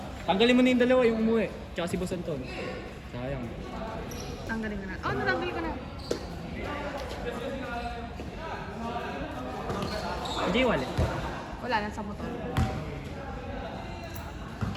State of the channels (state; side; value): identical; both; correlation 1.00